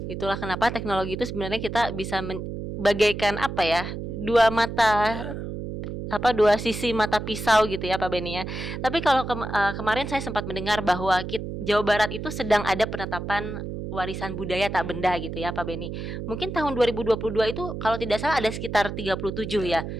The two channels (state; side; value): noise; right; hum, 6 dB below the sound